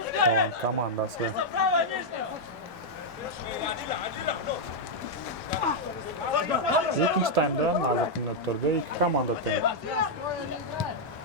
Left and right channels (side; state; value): both; normal; correlation -0.03